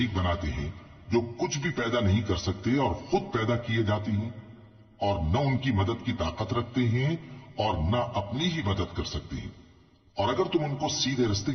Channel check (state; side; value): identical; both; correlation 1.00